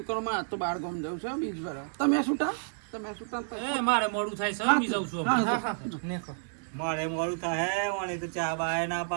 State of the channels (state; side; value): silent; left; digital silence